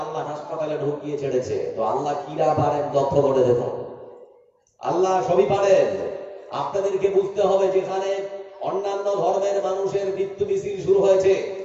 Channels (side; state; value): both; identical; correlation 1.00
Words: আল্লাহ হাসপাতালে ঢুকিয়ে ছেড়েছে। তো আল্লাহ কিরা পারেন লক্ষ্য করে দেখুন, আল্লাহ সবই পারেন। আপনাদেরকে বুঝতে হবে যেখানে অন্যান্য ধর্মের মানুষের মৃত্যু মিছিল শুরু হয়েছে